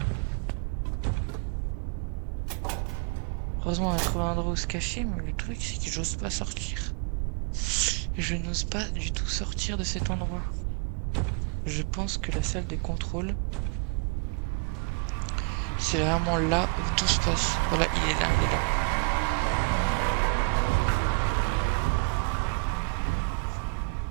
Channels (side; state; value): left; quieter; 34.6 dB